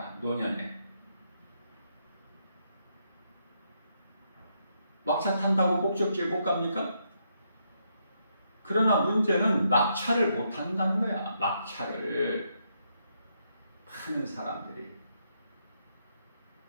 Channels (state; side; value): inverted; both; correlation -0.78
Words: 노년에 막차 탄다고 목적지에 못 갑니까? 그러나 문제는 막차를 못 탄다는 거야. 막차를 많은 사람들이